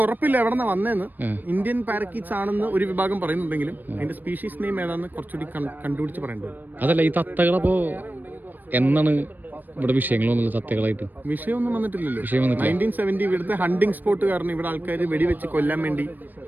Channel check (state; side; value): late; left; 0.089 ms